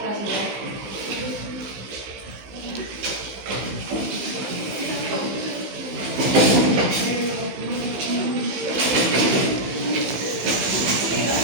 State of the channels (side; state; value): left; late; 15 ms